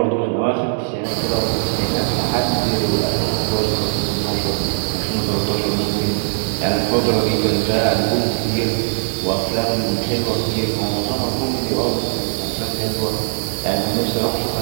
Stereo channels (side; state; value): left; silent; 63 dB below the other